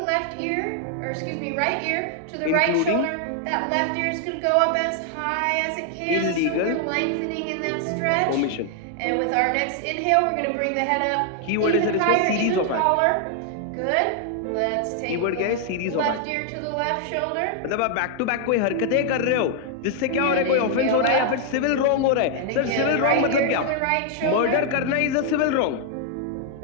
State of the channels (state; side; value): different; both; correlation 0.00